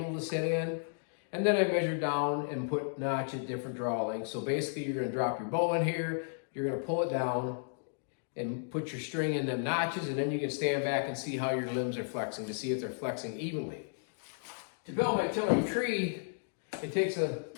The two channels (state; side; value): silent; right; digital silence